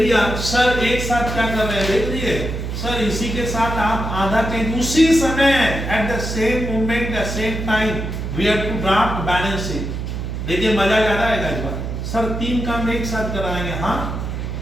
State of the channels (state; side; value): noise; right; hum, 4 dB below the sound